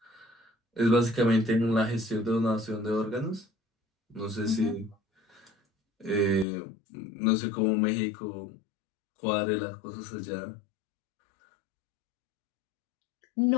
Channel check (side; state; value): right; drops out; at 6.5 s